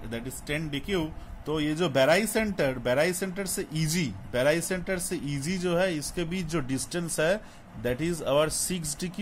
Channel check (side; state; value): both; identical; correlation 1.00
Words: that is 10 DQ। तो ये जो बेराई सेंटर से EG, बेराई सेंटर से EG जो है, इसके बीच जो डिस्टेंस है, दैट इज आवर 6